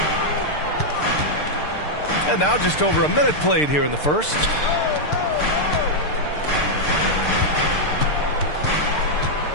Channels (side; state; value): right; late; 6.7 ms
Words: And now just over a minute played here in the first.